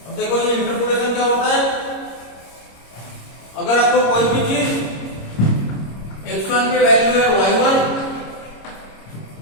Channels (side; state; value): right; late; 26 ms